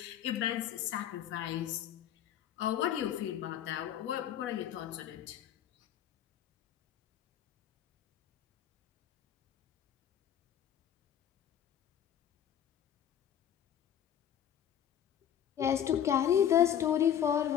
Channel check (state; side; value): quieter; right; 9.8 dB